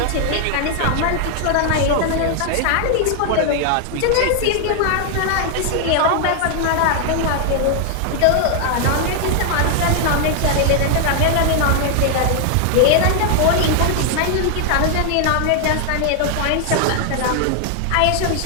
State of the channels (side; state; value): both; different; correlation 0.00